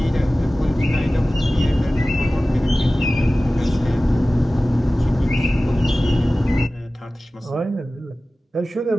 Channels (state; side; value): normal; both; correlation 0.97